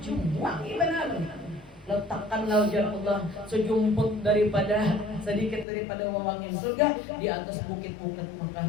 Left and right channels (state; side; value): drops out; right; at 5.7 s